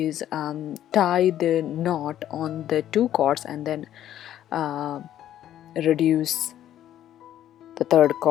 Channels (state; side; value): quieter; right; 11.7 dB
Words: tie the knot on the 2 cords and then reduce the 3rd